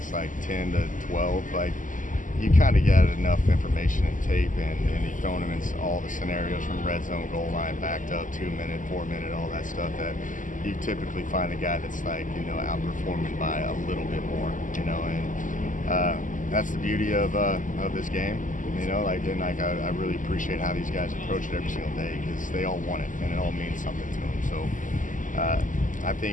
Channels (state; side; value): late; right; 0.38 ms